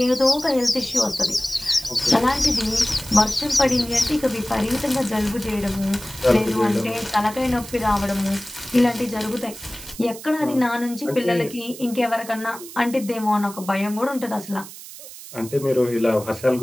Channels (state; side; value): noise; right; hiss, 15 dB below the sound